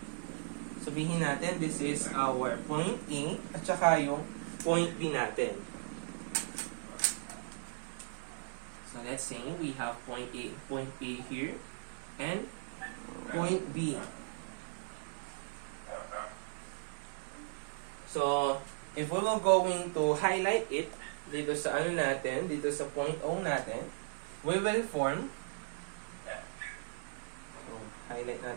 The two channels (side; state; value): left; silent; digital silence